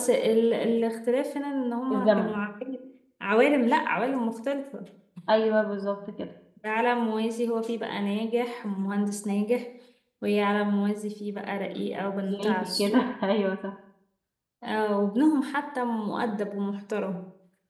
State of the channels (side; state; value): both; identical; correlation 1.00